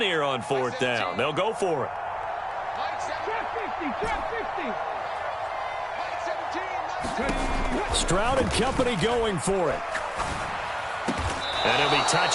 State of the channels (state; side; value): identical; both; correlation 1.00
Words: here on 4th down? They'll go for it. Stroud and company going for it. And he'll be